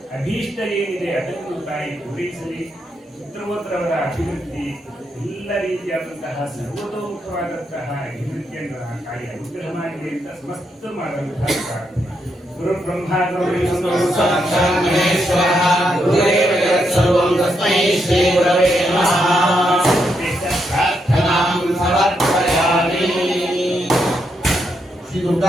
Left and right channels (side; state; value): both; normal; correlation 0.80